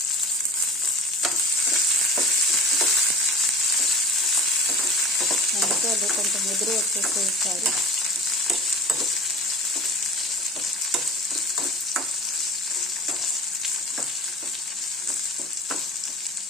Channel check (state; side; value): normal; both; correlation 0.40